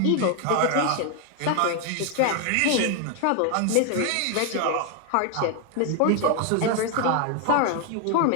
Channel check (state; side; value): different; both; correlation 0.00